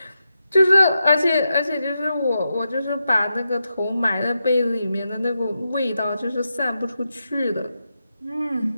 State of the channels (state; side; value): inverted; both; correlation -0.87